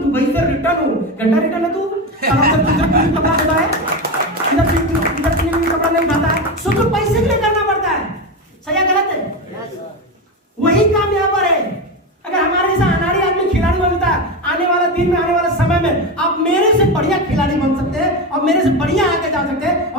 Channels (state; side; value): normal; both; correlation 0.18